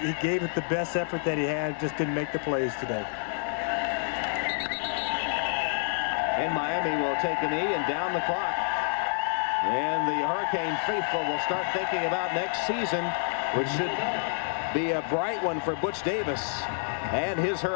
gave it the best effort that he had, just didn't make the plays today. And Miami will take a knee and down the clock. And the Hurricane faithful will start thinking about next season, which should be a bright one for Butch Davis and his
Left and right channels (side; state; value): right; silent; digital silence